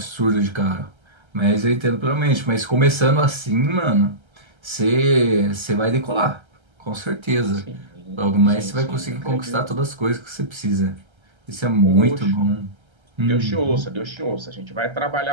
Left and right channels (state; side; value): late; left; 1.3 ms